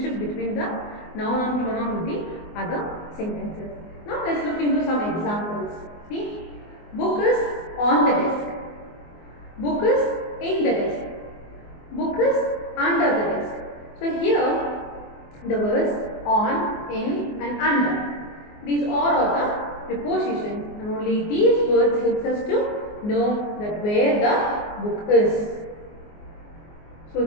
between the noun and pronoun with the other sentences. Now let's look into some examples. See, book is on the desk. Book is in the desk. Book is under the desk. So here the words on, in and under. These all are the prepositions and only these words helps us to know that where the book is. So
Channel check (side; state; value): right; late; 24 ms